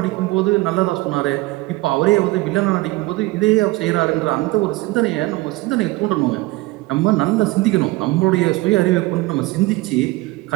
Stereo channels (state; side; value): quieter; left; 20.6 dB